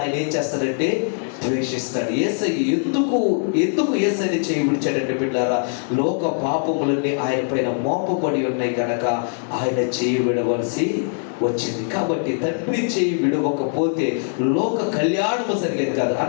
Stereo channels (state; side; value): silent; right; 60 dB below the other